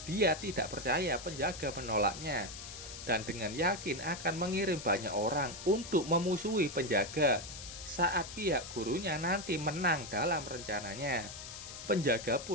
Dia tidak percaya penjaga menolaknya, dan dengan yakin akan mengirim banyak orang untuk memusuhi penjaga saat pihak gurunya nanti menang dalam rencananya. Penjaga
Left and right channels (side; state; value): left; noise; hiss, 11 dB below the sound